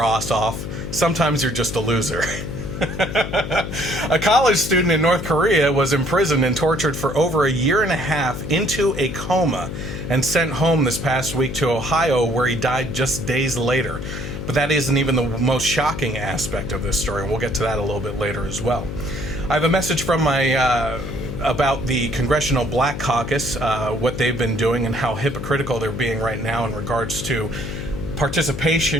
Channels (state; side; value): noise; left; hum, 7 dB below the sound